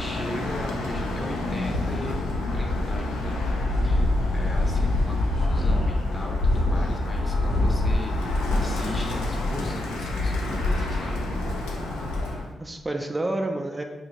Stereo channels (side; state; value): both; normal; correlation 0.83